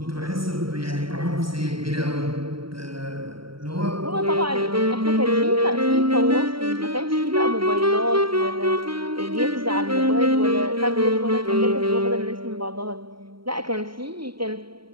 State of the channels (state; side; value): late; left; 0.74 ms